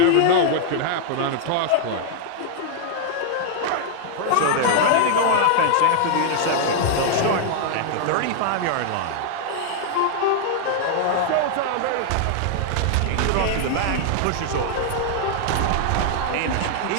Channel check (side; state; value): both; different; correlation 0.00